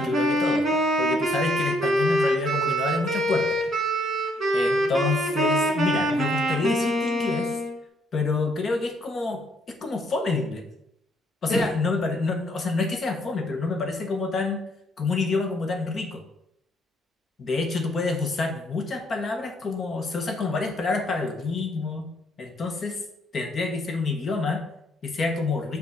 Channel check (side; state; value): both; normal; correlation 0.69